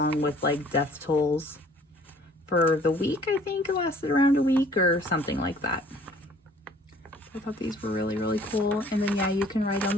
with like death tolls for the week. I think it lasted around a week or something like that. I thought these were really, really cool. And then yeah, you can write on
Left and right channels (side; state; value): both; normal; correlation 0.55